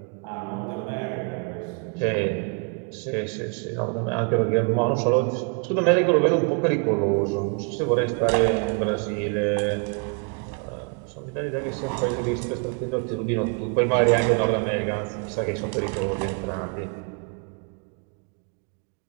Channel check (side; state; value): left; quieter; 38.5 dB